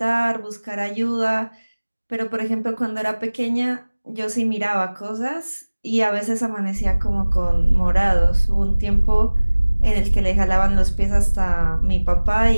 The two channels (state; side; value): inverted; both; correlation -1.00